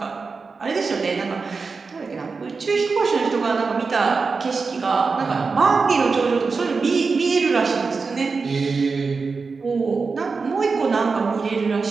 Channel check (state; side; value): quieter; left; 4.6 dB